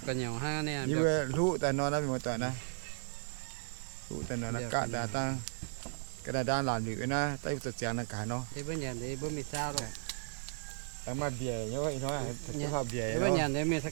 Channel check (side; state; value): left; silent; digital silence